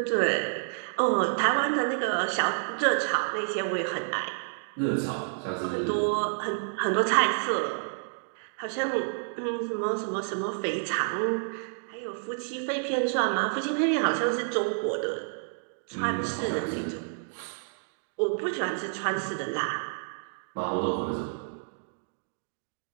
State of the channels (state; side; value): silent; left; digital silence